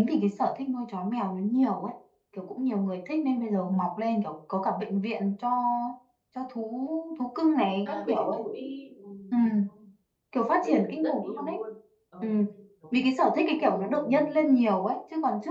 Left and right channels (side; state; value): both; identical; correlation 1.00